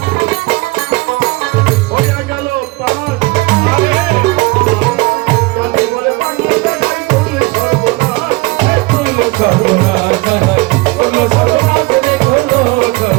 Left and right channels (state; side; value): quieter; left; 23.3 dB